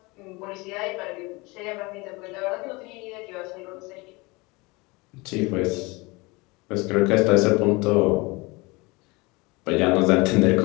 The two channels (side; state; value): right; quieter; 24.8 dB